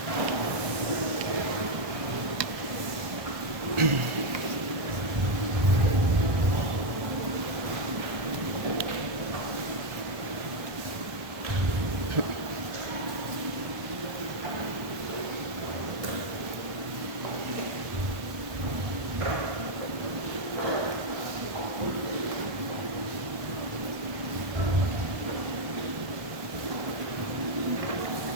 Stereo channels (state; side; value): late; left; 1.3 ms